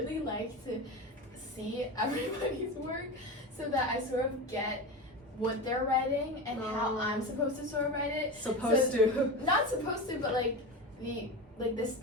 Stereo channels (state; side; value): normal; both; correlation 0.24